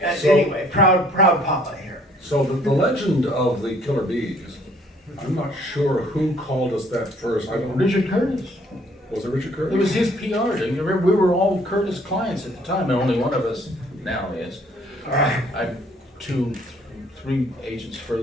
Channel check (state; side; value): normal; both; correlation 0.61